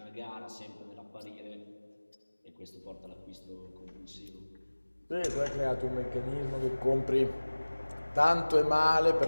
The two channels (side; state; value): both; inverted; correlation -1.00